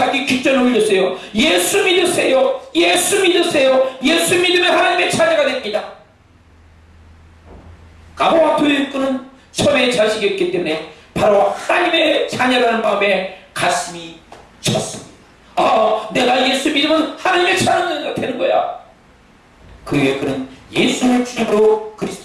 귓전에 울렸어요. 예수 믿으세요. 예수 믿으세요. 예수 믿으면 하나님의 자녀가 됩니다. 가가와 도요코는 처음에 자식이었기 때문에 바로 하나님의 자녀라는 마음에 가슴이 쳤습니다. 아, 내가 예수 믿으면 하나님의 자녀가 되는 거야. 그 후에 그는 예수를 주님으로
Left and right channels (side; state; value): both; identical; correlation 1.00